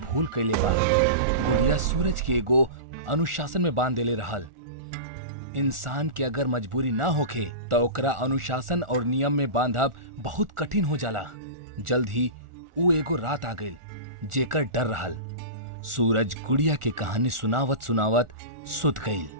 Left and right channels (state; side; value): late; left; 1.4 ms